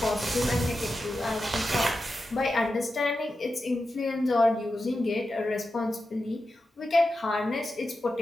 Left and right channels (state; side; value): normal; both; correlation 0.90